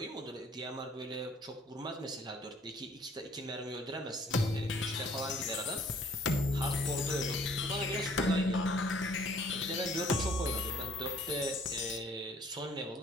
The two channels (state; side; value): normal; both; correlation 0.58